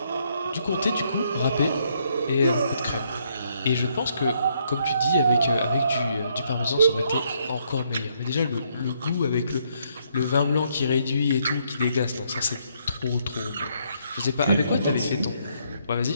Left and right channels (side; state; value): both; inverted; correlation -0.72